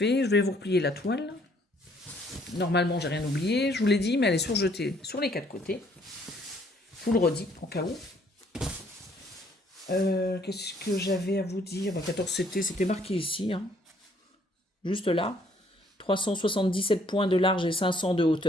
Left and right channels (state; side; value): normal; both; correlation 0.64